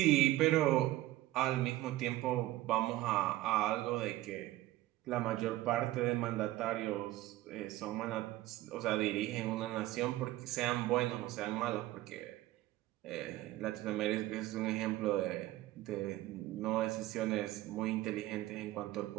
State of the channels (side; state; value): left; quieter; 16.4 dB